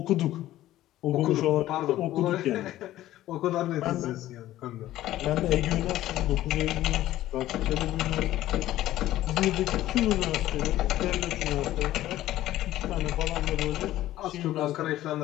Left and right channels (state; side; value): quieter; right; 14.4 dB